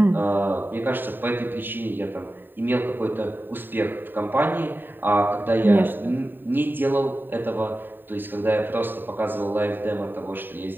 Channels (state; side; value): late; left; 0.093 ms